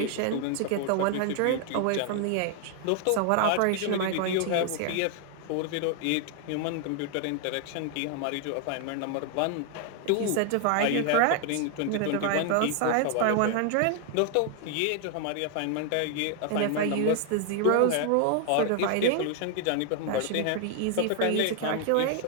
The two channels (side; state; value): both; different; correlation 0.00